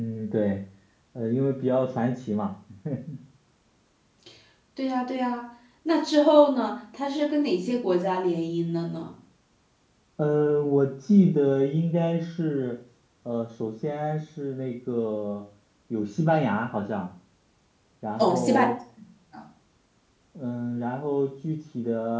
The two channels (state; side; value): identical; both; correlation 1.00